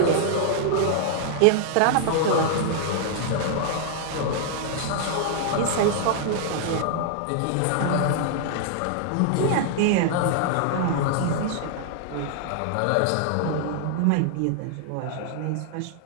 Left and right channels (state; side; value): different; both; correlation -0.01